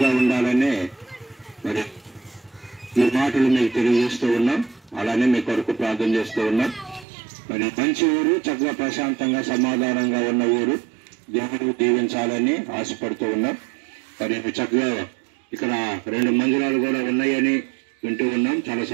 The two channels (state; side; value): drops out; left; at 7.1 s